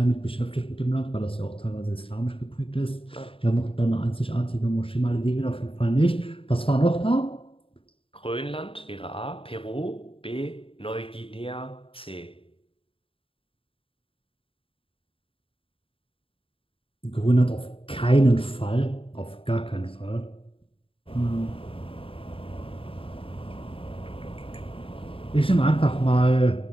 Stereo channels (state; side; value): late; right; 0.26 ms